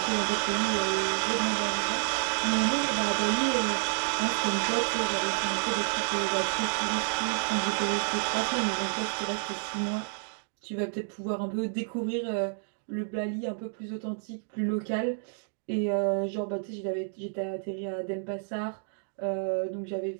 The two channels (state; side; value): silent; left; digital silence